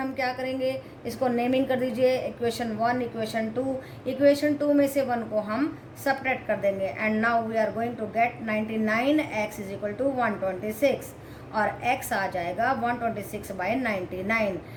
क्या करेंगे, इसको नेमिंग कर दीजिए, इक्वेशन 1, इक्वेशन 2। इक्वेशन 2 में से 1 को हम सब्ट्रैक्ट कर देंगे, and now we are going to get 99x is equal to 126 और x आ जाएगा 126/99।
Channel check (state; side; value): identical; both; correlation 1.00